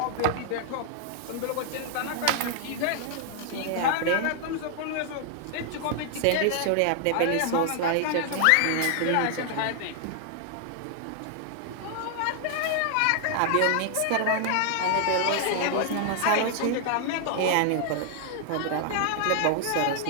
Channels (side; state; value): both; different; correlation 0.00